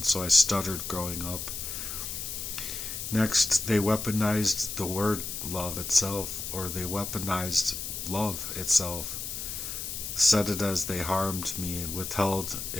so I stuttered growing up. Next, they weaponized the word love itself, or they weaponized love itself, said it as they harmed me and withheld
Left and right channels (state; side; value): noise; left; hiss, 5 dB below the sound